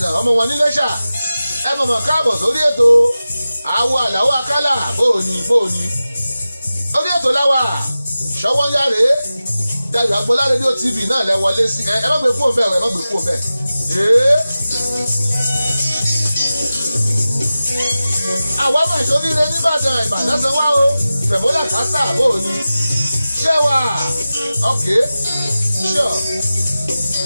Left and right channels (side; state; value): both; inverted; correlation -0.95